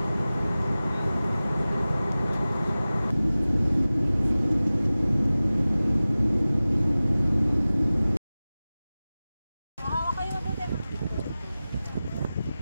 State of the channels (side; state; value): both; inverted; correlation -0.97